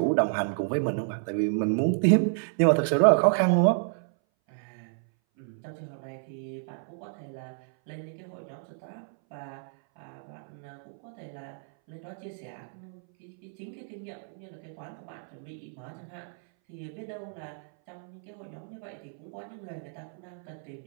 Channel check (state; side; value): silent; left; 58 dB below the other